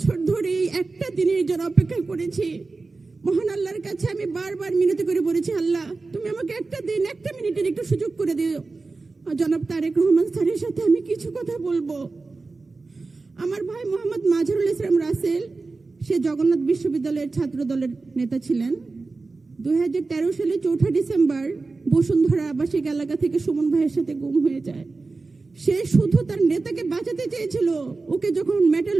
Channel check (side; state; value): left; quieter; 3.8 dB